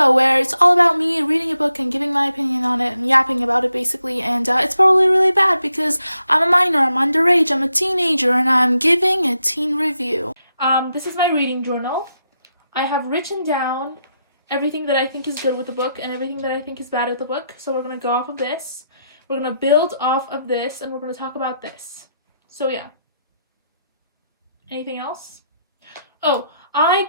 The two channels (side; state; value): both; inverted; correlation -0.82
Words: where it's all about me reading a book and giving my opinion on it and yapping about it basically. And it's probably really bad because I'm a minor, I'm underage, I'm a teenager, and I'm giving a teen review. This is my reading journal. I have written down everything that I think is good with the book and everything that I think is bad with the book. So we're going to go off of this. We're going to build off of this and we're going to talk about this. So yeah. Anything else? Oh, I